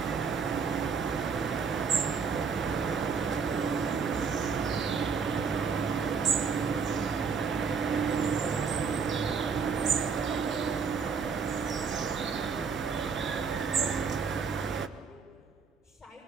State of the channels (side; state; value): left; quieter; 5.5 dB